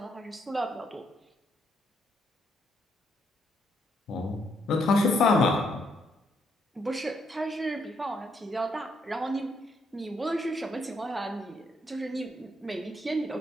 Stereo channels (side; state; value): both; normal; correlation 0.75